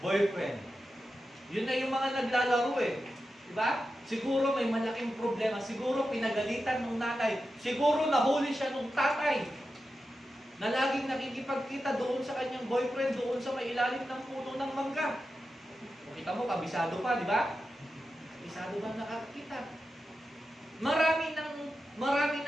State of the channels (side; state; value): both; normal; correlation 0.91